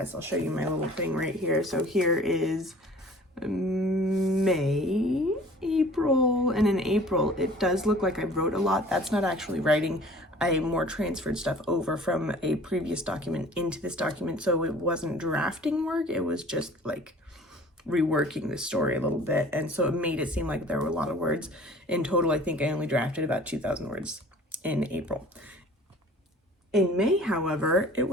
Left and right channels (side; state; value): both; normal; correlation 0.48